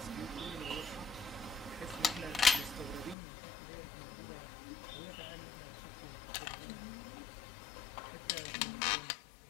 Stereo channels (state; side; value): drops out; right; at 3.2 s